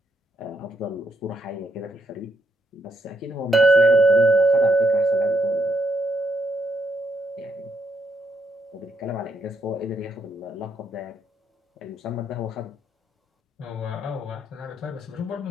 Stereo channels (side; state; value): both; normal; correlation 0.77